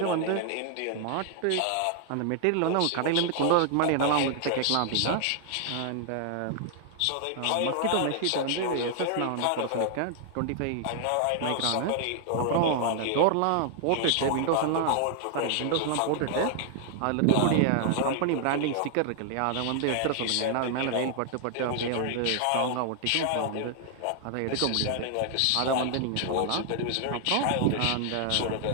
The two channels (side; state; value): both; different; correlation 0.00